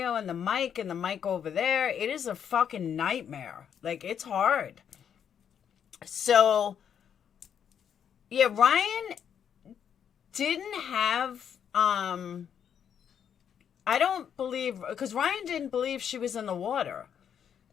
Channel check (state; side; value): quieter; right; 8.4 dB